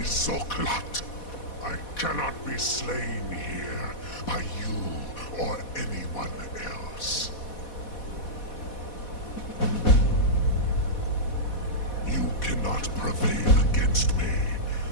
Zoklat. I cannot be slain here by you or anyone else. You cannot prevail against me.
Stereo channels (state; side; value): late; right; 4.1 ms